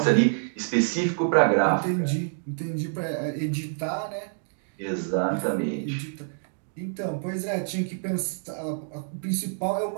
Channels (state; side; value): silent; left; digital silence